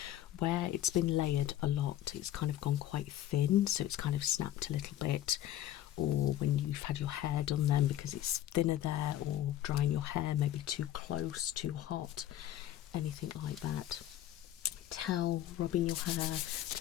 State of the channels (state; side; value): quieter; right; 12.8 dB